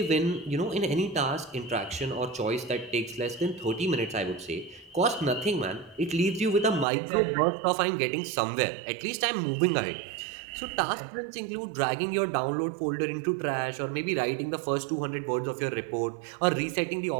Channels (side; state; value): left; drops out; at 6.9 s